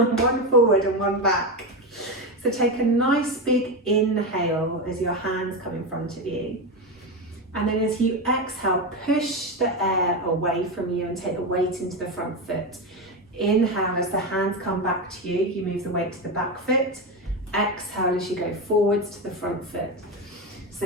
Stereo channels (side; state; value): both; normal; correlation 0.15